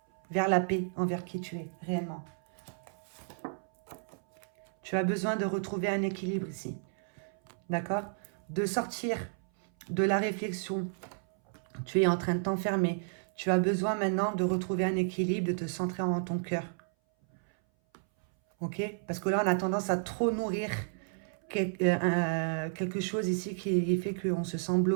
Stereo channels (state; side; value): silent; left; 56 dB below the other